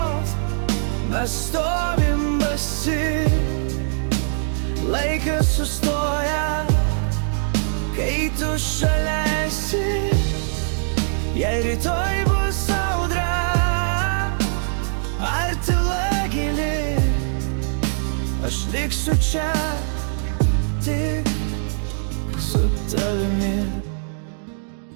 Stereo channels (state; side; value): silent; left; digital silence